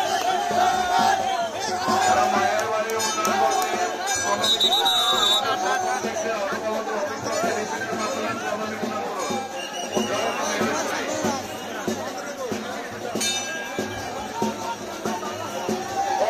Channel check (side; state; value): both; identical; correlation 1.00